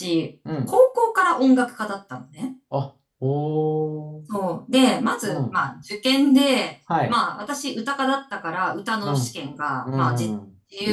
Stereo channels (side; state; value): both; identical; correlation 1.00